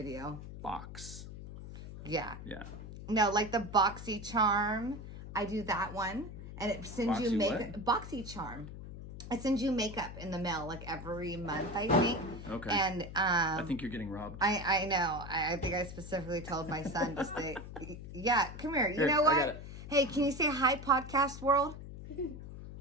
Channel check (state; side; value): noise; left; hum, 11 dB below the sound